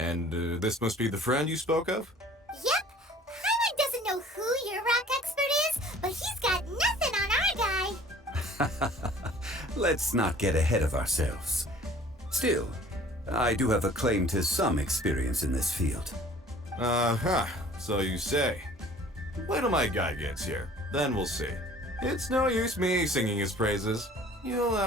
this must be the friend you spoke of? Yep. Paimon doesn't know who your rock expert is, but he's got nothing on our guy. Let's not get ahead of ourselves. Still, I do have a claim to some experience in this field. So you say. Wait till my guy gets here, then we'll see. It's no use me singing his praises. You'll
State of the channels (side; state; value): both; normal; correlation 0.50